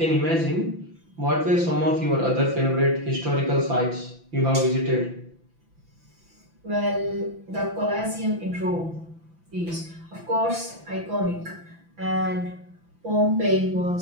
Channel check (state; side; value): late; left; 5.9 ms